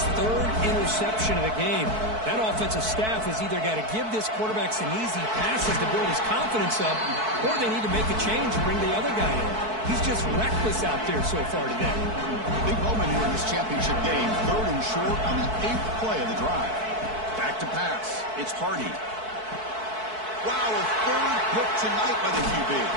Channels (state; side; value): late; left; 4.6 ms